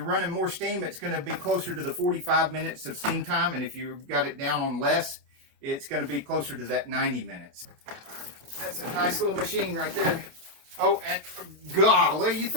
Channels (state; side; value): late; left; 28 ms